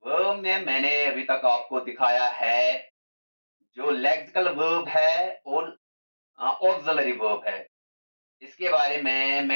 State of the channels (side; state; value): both; inverted; correlation -1.00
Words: वर्ब में मैंने अभी तक आपको दिखाया है जो लेक्सिकल वर्ब है और ऑक्सिलरी वर्ब है। इसके बारे में